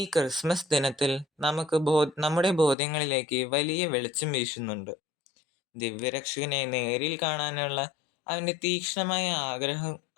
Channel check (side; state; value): right; drops out; at 2.8 s